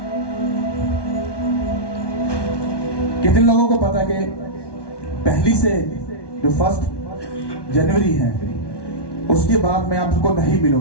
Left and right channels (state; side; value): late; right; 1.1 ms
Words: कितने लोगों को पता कि पहली से जो 1 जनवरी है उसके बाद मैं आपको नहीं